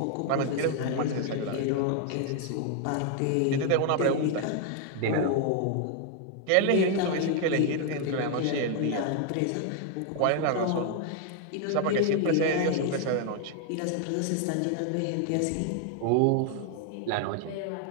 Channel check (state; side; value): different; both; correlation 0.00